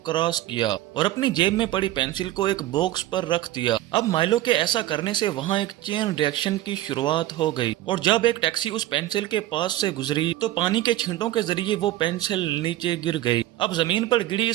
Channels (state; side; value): quieter; left; 15.0 dB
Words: क्रॉस किया और अपनी जेब में पड़ी पेंसिल को एक बॉक्स पर रख दिया। अब माइलो के ऐसा करने से वहाँ एक चेन रिएक्शन की शुरुआत हो गई और जब एक टैक्सी उस पेंसिल के पास से गुजरी तो पानी के छींटों के जरिए वो पेंसिल नीचे गिर गई। अब जमीन पर गिरी